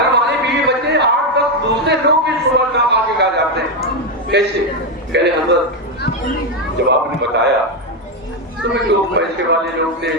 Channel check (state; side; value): normal; both; correlation 0.07